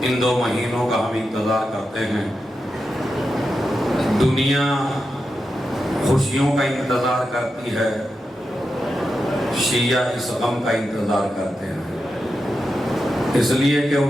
ان 2 مہینوں کا ہم انتظار کرتے ہیں۔ دنیا خوشیوں کا انتظار کرتی ہے، شیعہ اس غم کا انتظار کرتے ہیں، اس لیے کہ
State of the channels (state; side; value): normal; both; correlation 0.89